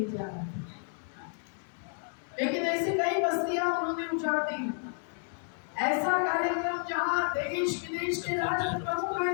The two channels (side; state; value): right; silent; 57 dB below the other